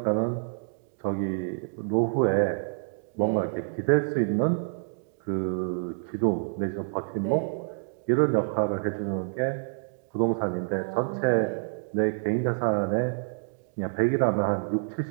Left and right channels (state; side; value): silent; left; digital silence